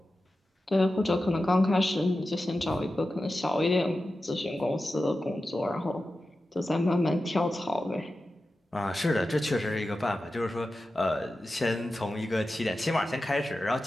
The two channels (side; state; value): both; normal; correlation 0.93